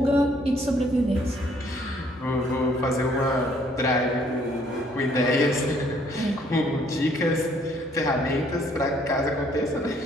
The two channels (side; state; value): both; normal; correlation 0.64